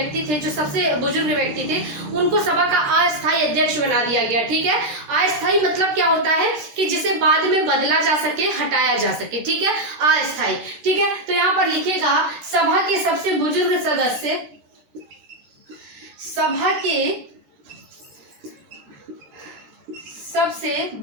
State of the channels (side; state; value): left; late; 14 ms